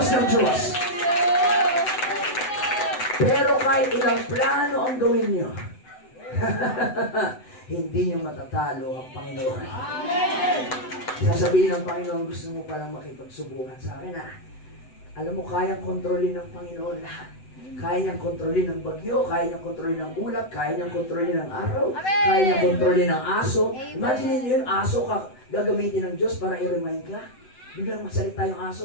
ng Diyos. Pero kahit ilang plano ang gawin nyo, hindi nyo matatalo ang Panginoon. Sasabihin ng Panginoon, gusto mo palang makipagsubukan sa akin, alam mo, kayang kontrolin ng Panginoon lahat. Kaya niyang kontrolin ng bagyo, kaya niyang kontrolin ng ulap, kaya niyang kontrolin ng araw, kaya niyang kontrolin ng aso. Imagine niyo yun, aso ka gagamitin ng Diyos para i-remind ka. Biglang masalita yung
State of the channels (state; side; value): late; right; 7.9 ms